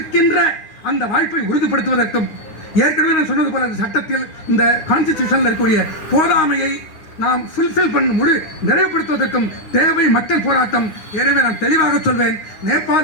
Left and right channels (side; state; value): right; late; 9.9 ms